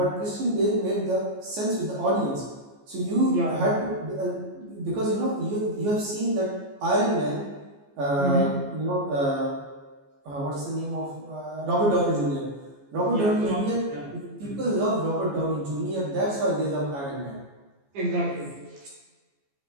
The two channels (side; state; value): left; late; 14 ms